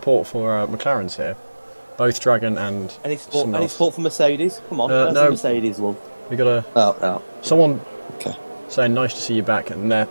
for McLaren's here. Both Dragon and any support for Mercedes? Come on, no. Mercedes, love. We got someone saying nice to see you back, and they're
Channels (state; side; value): inverted; both; correlation -1.00